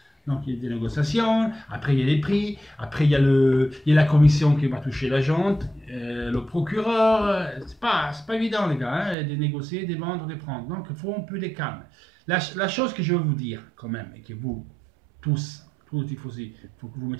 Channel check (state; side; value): drops out; left; at 9.2 s